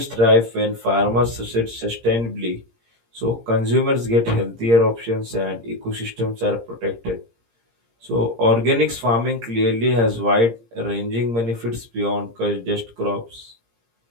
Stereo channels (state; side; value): late; left; 17 ms